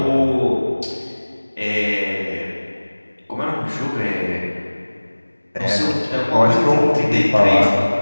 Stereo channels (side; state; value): both; inverted; correlation -1.00